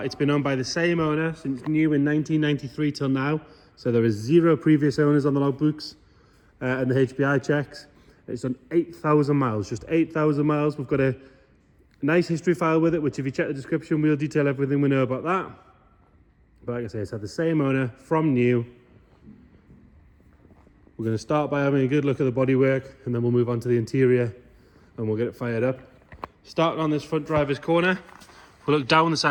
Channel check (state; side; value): identical; both; correlation 1.00